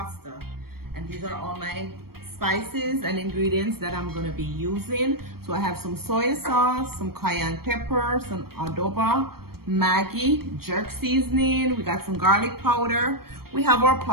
and these are all my spices and ingredients that I'm going to be using. So I have some soy sauce, some cayenne pepper, some adobo, Maggi, jerk seasoning, we got some garlic powder, we have our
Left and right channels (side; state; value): left; late; 0.94 ms